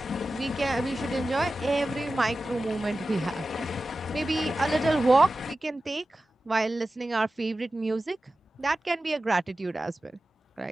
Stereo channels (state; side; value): normal; both; correlation 0.94